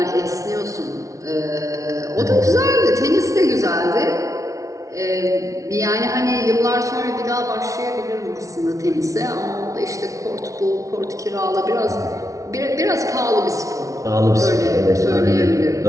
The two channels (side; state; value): left; late; 0.16 ms